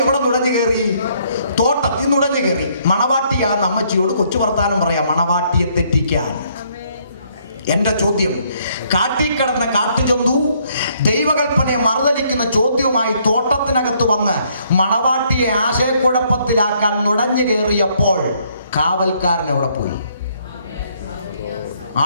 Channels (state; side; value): inverted; both; correlation -0.68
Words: എവിടെ നുഴഞ്ഞു കയറി? തോട്ടത്തിൽ നുഴഞ്ഞു കയറി. മണവാട്ടിയാന്ന് അമ്മച്ചിയോട് കൊച്ചു വർത്താനം പറയാം, മണവാട്ടിയെ തെറ്റിക്കാൻ. എന്റെ ചോദ്യം, കാട്ടിക്കിടന്ന കാട്ടുജന്തു ദൈവകൽപ്പനയെ മറുതലിക്കുന്ന ചോദ്യവുമായി തോട്ടത്തിനകത്ത് വന്ന് മണവാട്ടിയെ ആശയക്കുഴപ്പത്തിലാക്കാൻ നുഴഞ്ഞു കയറിയപ്പോൾ കാവൽക്കാരൻ എവിടെ പോയി?